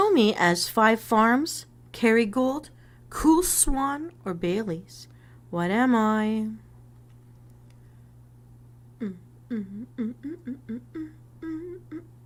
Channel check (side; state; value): both; identical; correlation 1.00